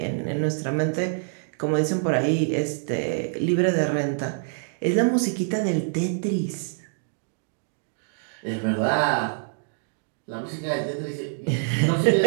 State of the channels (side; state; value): left; silent; digital silence